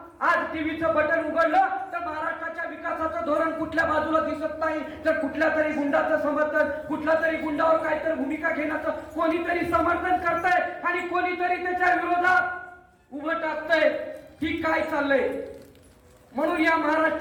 आज टीव्हीचं बटन उघडलं तर महाराष्ट्राच्या विकासाचं धोरण कुठल्या बाजूला दिसत नाही, तर कुठल्या तरी गुंडाचं समर्थन, कुठल्या तरी गुंडावर काहीतरी भूमिका घेण्याचं कोणीतरी समर्थन करतंय आणि कोणीतरी त्याच्या विरोधात उभं टाकतंय. की काय चाललंय? म्हणून या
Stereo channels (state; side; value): identical; both; correlation 1.00